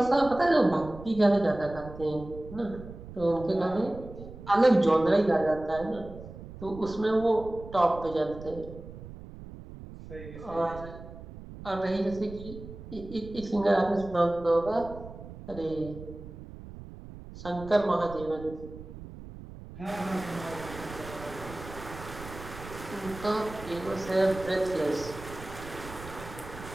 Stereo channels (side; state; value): right; noise; rumble, 14 dB below the sound